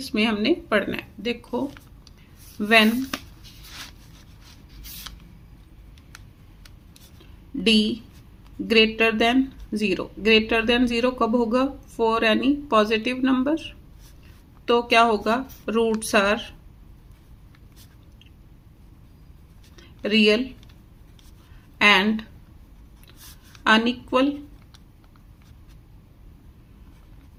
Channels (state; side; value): identical; both; correlation 1.00